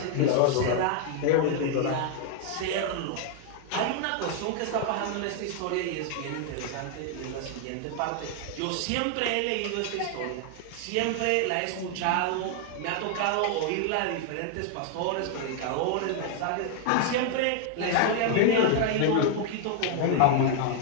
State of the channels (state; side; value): different; both; correlation 0.00